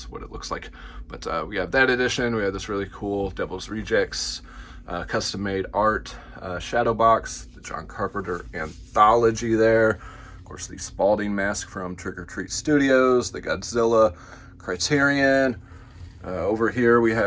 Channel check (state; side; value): identical; both; correlation 1.00